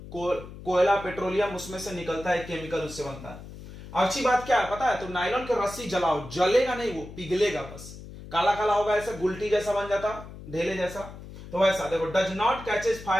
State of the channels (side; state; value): left; noise; hum, 14 dB below the sound